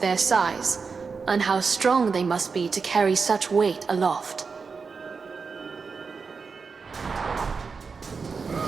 their size, and how strong they must be to carry such weight aloft.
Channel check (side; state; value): left; quieter; 5.0 dB